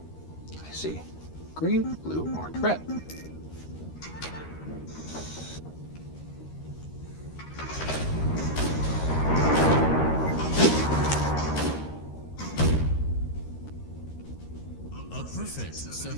I see. Green, blue, orange, red. A perfect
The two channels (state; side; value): late; right; 13 ms